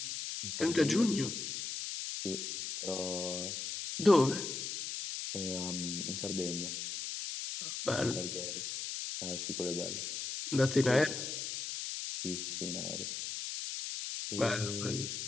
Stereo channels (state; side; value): noise; left; hiss, 4 dB below the sound